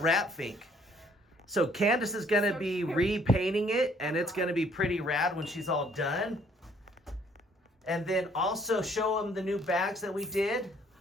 fink. So Candace is going to be repainting it, and it's going to be pretty rad when she's all done. And then also show them the new bags that we did.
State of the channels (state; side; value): normal; both; correlation 0.63